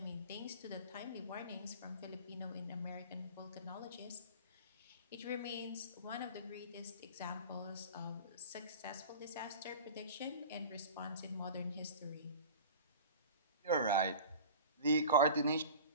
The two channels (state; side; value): inverted; both; correlation -0.38